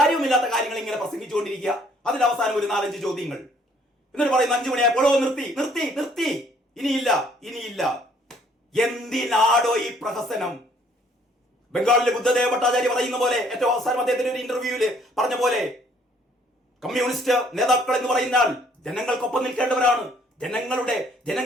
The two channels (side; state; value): both; normal; correlation 0.62